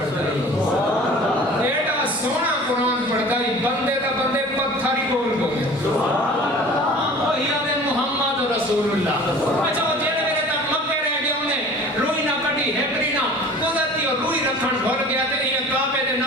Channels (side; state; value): both; normal; correlation 0.43